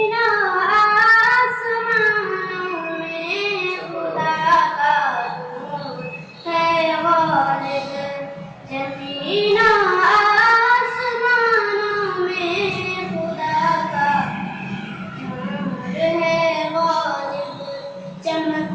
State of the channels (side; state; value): both; identical; correlation 1.00